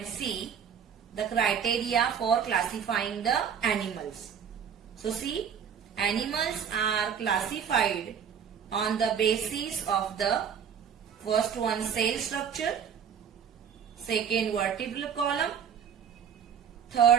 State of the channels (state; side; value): quieter; left; 7.7 dB